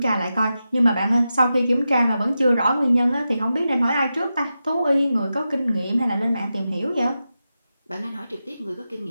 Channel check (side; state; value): both; inverted; correlation -0.91